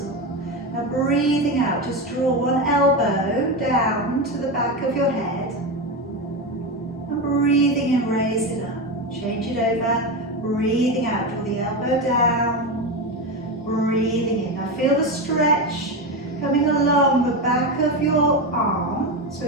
Now breathing out, just draw one elbow down to the back of your head. And breathing in, raise it up. Change it over. Breathing out, draw the elbow down. Breathing in. Now feel the stretch coming along the back of your arm, so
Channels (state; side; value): normal; both; correlation 0.16